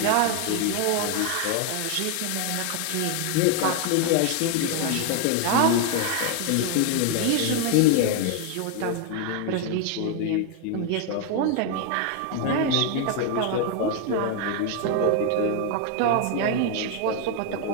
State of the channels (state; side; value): different; both; correlation 0.01